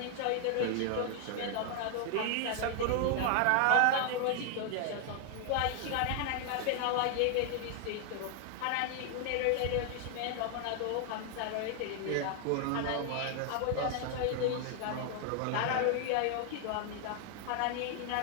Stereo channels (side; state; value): both; different; correlation 0.00